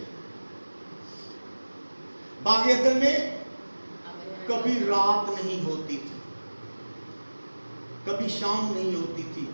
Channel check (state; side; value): inverted; both; correlation -1.00